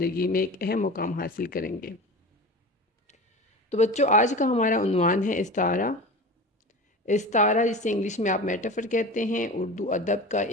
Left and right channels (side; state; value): both; normal; correlation 0.32